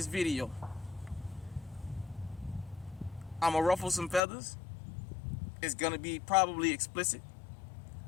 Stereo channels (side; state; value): right; drops out; at 4.2 s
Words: video. I'm going to ruffle some feathers. It's going to be probably explicit.